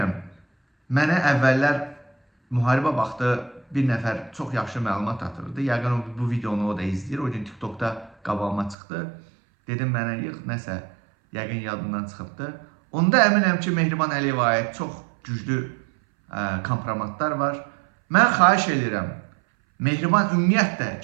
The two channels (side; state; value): left; drops out; at 8.8 s